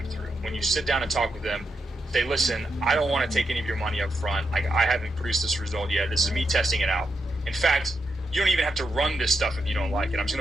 through. When you sit down and talk with them, say, listen, I don't want to take any of your money up front. I haven't produced this result yet. This is me testing it out. In fact, you don't even have to run this stuff if you don't like it. I'm just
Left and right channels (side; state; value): both; normal; correlation 0.84